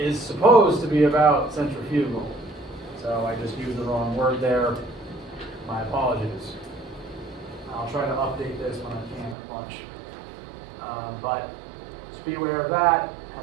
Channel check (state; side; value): drops out; left; at 9.3 s